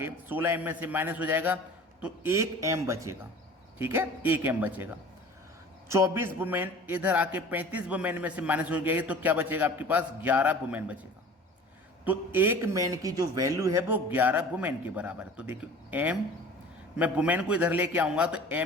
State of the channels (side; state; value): both; normal; correlation 0.42